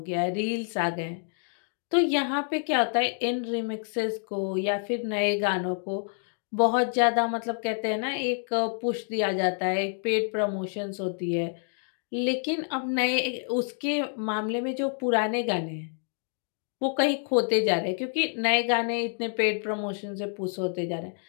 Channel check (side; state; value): right; silent; 59 dB below the other